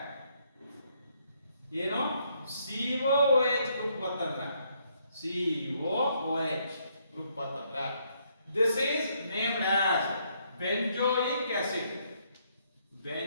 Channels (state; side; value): inverted; both; correlation -0.72